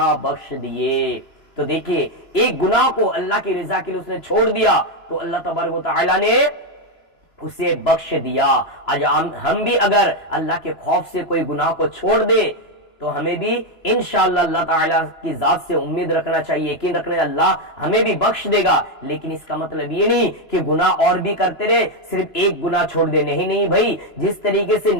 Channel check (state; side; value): late; right; 3.0 ms